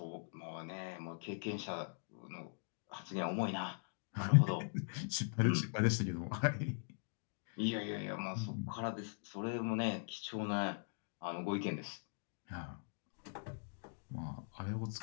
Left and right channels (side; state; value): right; silent; digital silence